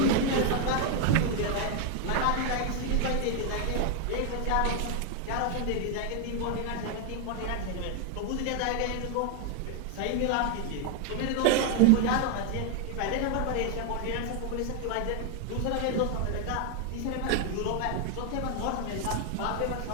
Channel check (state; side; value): different; both; correlation 0.01